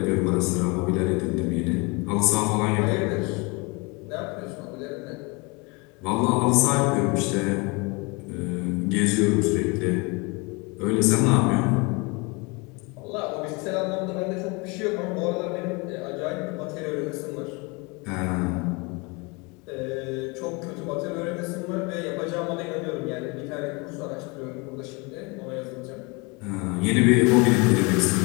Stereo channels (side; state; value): right; quieter; 27.9 dB